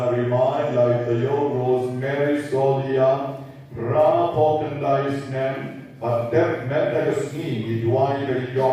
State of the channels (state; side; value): identical; both; correlation 1.00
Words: Rimai, Laitayo, Rosemary Solia, Bakhyndai Snem, Pater Metagasni, Idwai,